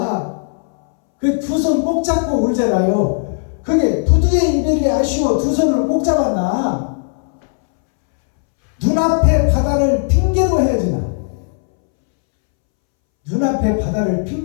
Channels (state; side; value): silent; right; 67 dB below the other